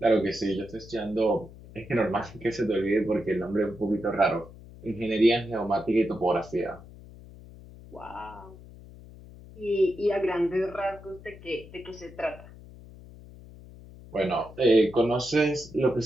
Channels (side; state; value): left; noise; hum, 18 dB below the sound